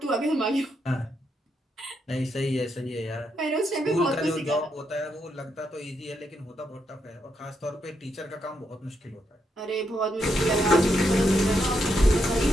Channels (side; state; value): both; normal; correlation 0.80